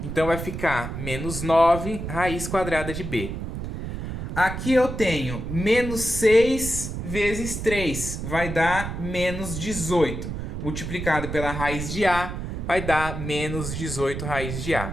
Então vai ficar menos 9 raiz quadrada de b. Aqui eu tenho menos 6 vezes 3. Vai dar menos 18. Multiplicado pela raiz de a, vai dar menos 18 raiz de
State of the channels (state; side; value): noise; right; rumble, 6 dB below the sound